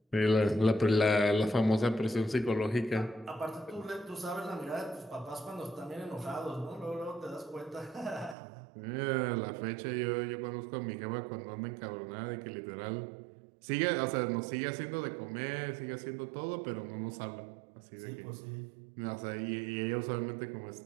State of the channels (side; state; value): left; drops out; at 8.3 s